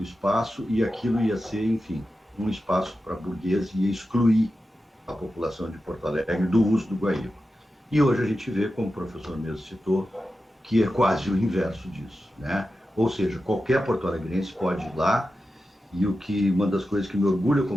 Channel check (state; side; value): normal; both; correlation 0.91